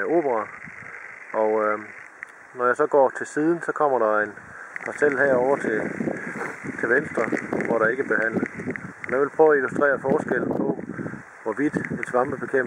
Obra. Og når jeg så går til siden, så kommer der en parcel herover til venstre, hvor der ikke er behandlet. Og jeg vil prøve at illustrere forskellen på, hvorvidt en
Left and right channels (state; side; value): identical; both; correlation 1.00